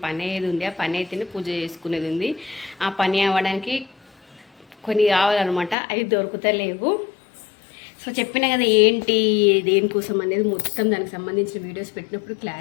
పని అయ్యేది ఉంది. ఆ పని అయితేనే పూజ చేసుకునేది ఉంది. ఆ పని అవ్వడానికి కొన్ని కావాలన్నమాట, అవి దొరుకుతలేవు. సో చెప్పిన కదా ఏంటి దేనికోసం అనేది మొత్తం దానికి సంబంధించిన వీడియోస్ పెట్టినప్పుడు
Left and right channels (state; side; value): drops out; right; at 5.8 s